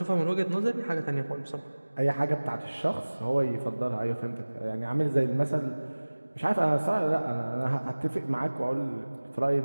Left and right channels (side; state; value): both; inverted; correlation -1.00